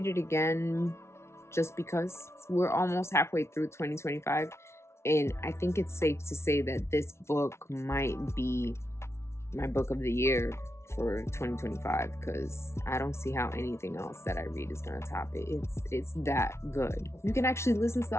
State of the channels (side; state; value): right; late; 0.13 ms